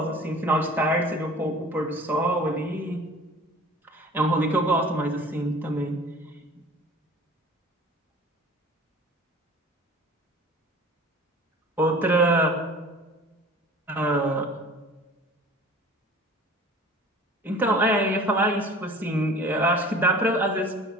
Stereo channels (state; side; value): normal; both; correlation 0.43